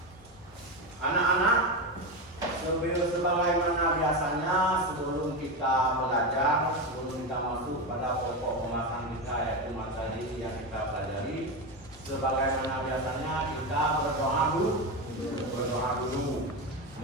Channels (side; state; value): both; normal; correlation 0.16